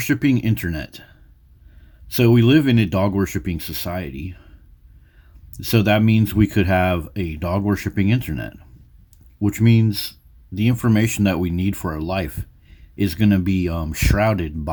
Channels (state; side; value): identical; both; correlation 1.00